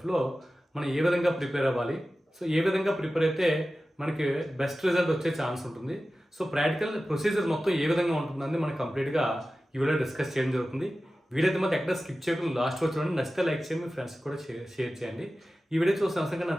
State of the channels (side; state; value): both; normal; correlation 0.95